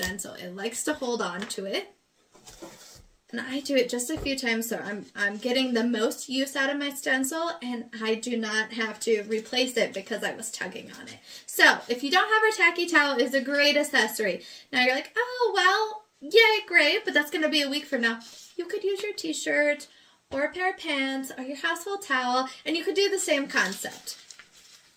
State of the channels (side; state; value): both; identical; correlation 1.00